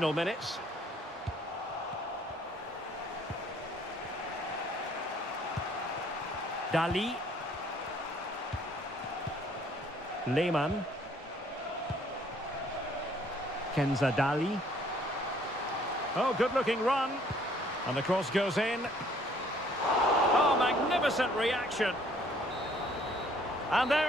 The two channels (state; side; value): normal; both; correlation 0.61